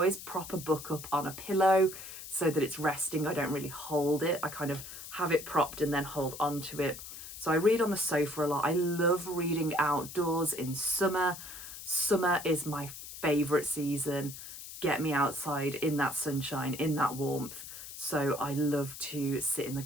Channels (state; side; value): noise; left; hiss, 12 dB below the sound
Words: prop a book up on a pillow so that it's resting. I don't really hold it. I kind of have it propped and then hold onto it. So I read on the sofa a lot. I love reading outdoors in summer. Summer is my favourite season. Get me outside in that sunshine, in that warmth. So I love to sit in the